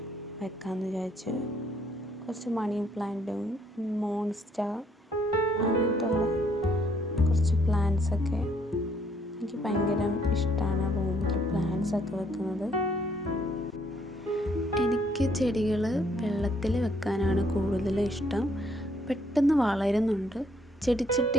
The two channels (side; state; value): both; normal; correlation 0.67